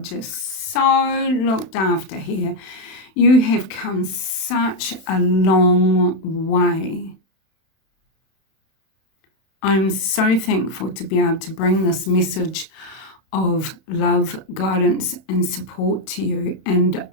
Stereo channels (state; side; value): late; right; 32 ms